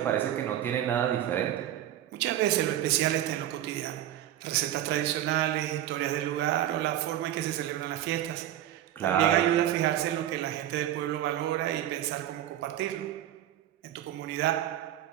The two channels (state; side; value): quieter; left; 12.2 dB